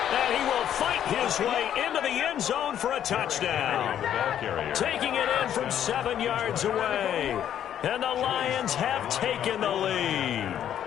And he will fight his way into the end zone for a touchdown. Taking it in from 7 yards away. And the Lions have taken the lead.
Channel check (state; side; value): quieter; right; 10.2 dB